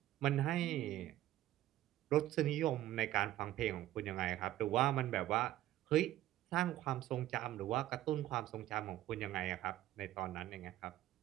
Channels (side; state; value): left; quieter; 14.2 dB